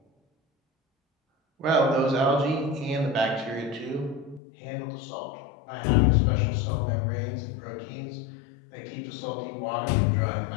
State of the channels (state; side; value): drops out; right; at 4.4 s